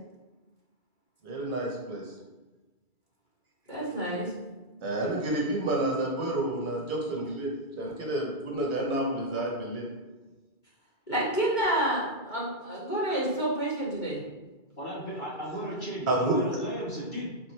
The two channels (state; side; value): late; right; 2.3 ms